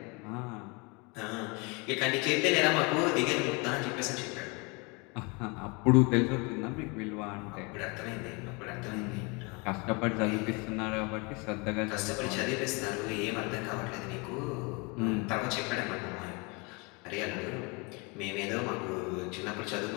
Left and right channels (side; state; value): right; quieter; 29.5 dB